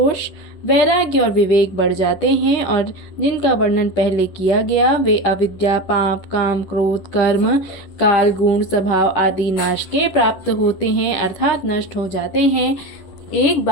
वैराग्य और विवेक बढ़ जाते हैं, और जिनका वर्णन पहले किया गया वे अविद्या पाप काम क्रोध कर्म काल गुण स्वभाव आदि नाश के प्राप्त होते हैं अर्थात नष्ट हो जाते हैं। एक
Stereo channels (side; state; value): right; late; 10 ms